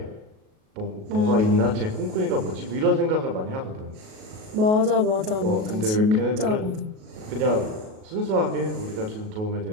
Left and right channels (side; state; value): left; late; 37 ms